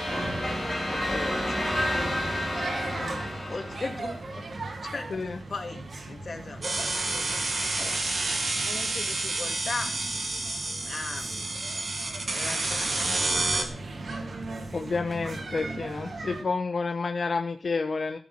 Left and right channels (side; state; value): both; normal; correlation 0.90